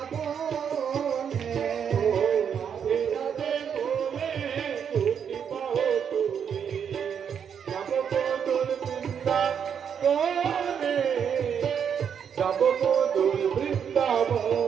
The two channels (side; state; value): left; quieter; 7.7 dB